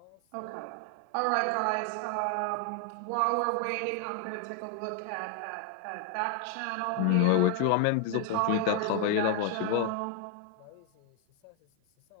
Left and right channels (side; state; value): both; different; correlation 0.00